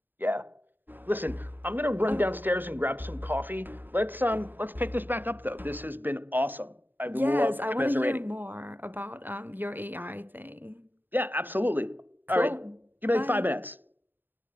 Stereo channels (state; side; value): late; left; 0.092 ms